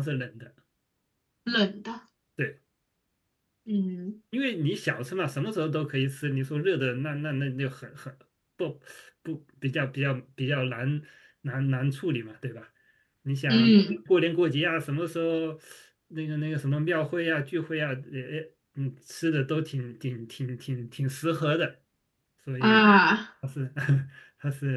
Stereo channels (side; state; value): both; identical; correlation 1.00